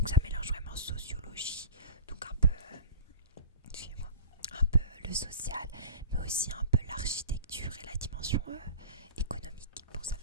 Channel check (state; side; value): inverted; both; correlation -0.35